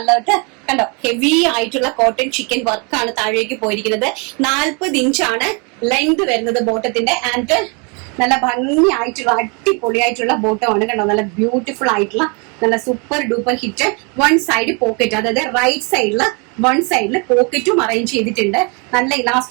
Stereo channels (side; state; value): left; quieter; 33.2 dB